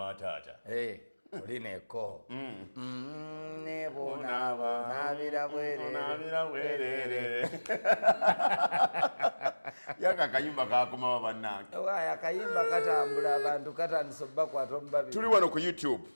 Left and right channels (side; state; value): both; inverted; correlation -1.00